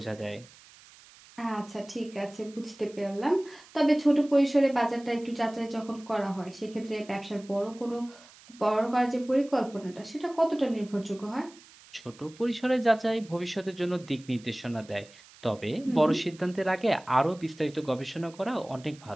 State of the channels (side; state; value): right; noise; hiss, 23 dB below the sound